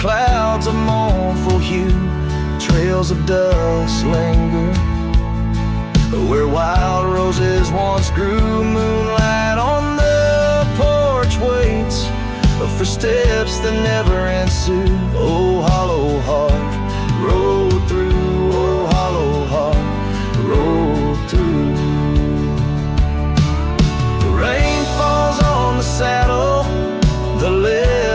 of mournful hue. Trails of dust linger where wild roses once grew. Moonlight on the porch waits for steps that never ensue. Oh, hollow heart rode through, oh, hollow heart rode through. The rain falls on the saddle, the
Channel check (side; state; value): both; identical; correlation 1.00